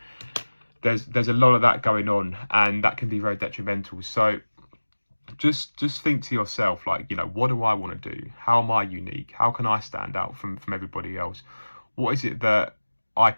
there's a lot of that going on, and that can be very detrimental. So just think to yourself, like, you know, what do I want to do? How am I unique? How can I stand out from everybody else? What is it that I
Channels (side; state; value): both; inverted; correlation -1.00